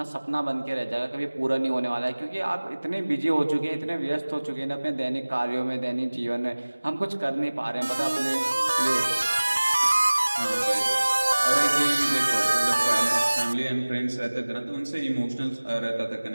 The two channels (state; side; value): inverted; both; correlation -1.00